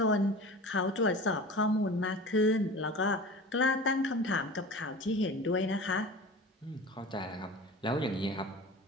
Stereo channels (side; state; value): both; normal; correlation 0.36